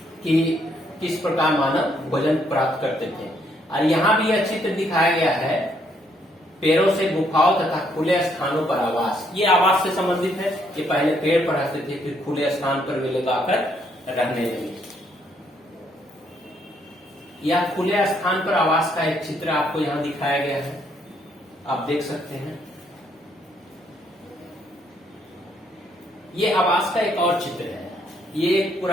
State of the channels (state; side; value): normal; both; correlation 0.71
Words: कि किस प्रकार मानव भोजन प्राप्त करते थे। और यहाँ भी यह चित्र दिखाया गया है पेड़ों से गुफाओं तथा खुले स्थानों पर आवास। ये आवास से संबंधित है। ये पहले पेड़ पर रहते थे, फिर खुले स्थान पर वे लोग आकर रहने लगे। यह खुले स्थान पर आवास का एक चित्र आपको यहाँ दिखाया गया है, आप देख सकते हैं। ये आवास का एक और चित्र है। ये एक